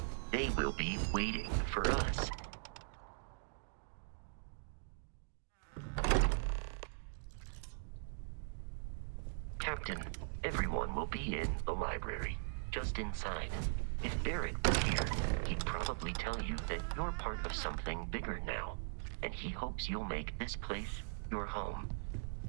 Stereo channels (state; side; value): silent; left; digital silence